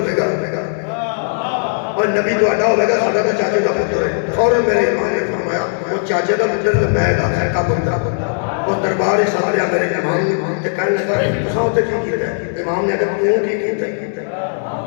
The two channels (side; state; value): right; silent; 67 dB below the other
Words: گا اور نبی تو اڈا ہوگا ساڑھا دا چاچے دا پتر ہے فوراں میرے امام نے فرمایا وہ چاچے دا پتر ہے میں دا ہے کا بندہ اور دربار سامنے آ میرے امام نے کہنے لگا تو ہوتے کی کیتا ہے امام نے کہا تو کی کیتا ہے